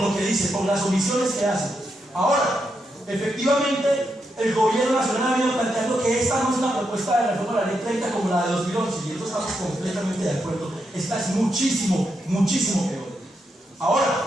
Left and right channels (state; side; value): normal; both; correlation 0.83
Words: lo que dice, por las omisiones que hace. Ahora, efectivamente, el gobierno nacional ha venido planteando que esta no es una propuesta de reforma de la ley 30 como la de 2011, y eso estamos completamente de acuerdo. Esta es muchísimo, muchísimo peor.